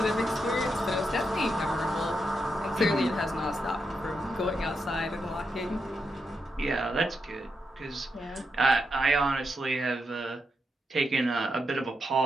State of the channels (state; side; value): normal; both; correlation 0.84